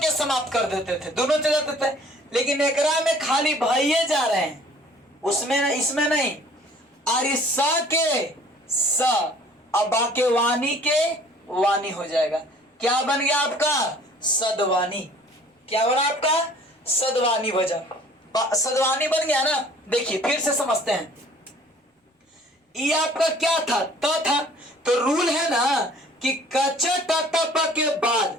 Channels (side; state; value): both; normal; correlation 0.53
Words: समाप्त कर देते थे, दोनों चले जाते थे, लेकिन एकरा में खाली भैया जा रहे हैं, उसमें इसमें नहीं। और इस स के स, अब बाके वाणी के वाणी हो जाएगा। क्या बन गया आपका, सदवानी। क्या बना आपका, सदवानी बजा, सदवानी बन गया ना। देखिए फिर से समझते हैं, ये आपका क्या था, त था, तो रूल है ना कि कच ट के बाद